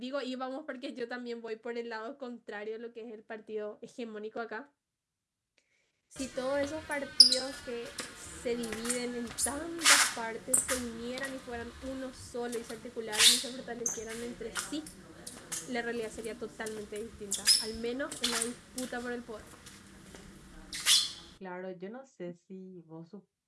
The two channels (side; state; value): both; identical; correlation 1.00